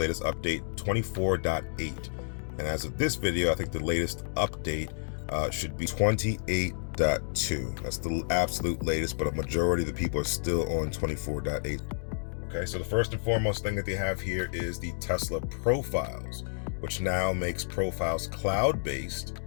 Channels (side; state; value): right; silent; digital silence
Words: update 24.8. And as of this video, I think the latest update should be 28.2. That's the absolute latest, but a majority of the people are still on 24.8. Okay, so the first and foremost thing that they have here is the Tesla profiles, which now makes profiles cloud-based